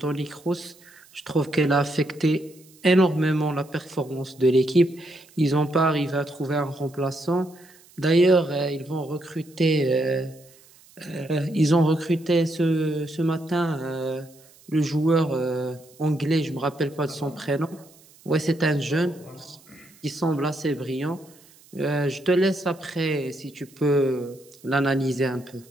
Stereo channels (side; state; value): right; noise; hiss, 27 dB below the sound